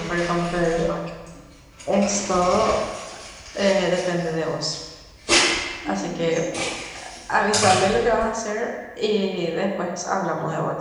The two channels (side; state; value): both; identical; correlation 1.00